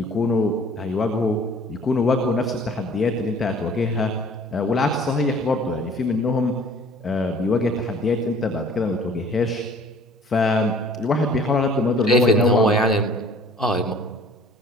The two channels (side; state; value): both; normal; correlation 0.51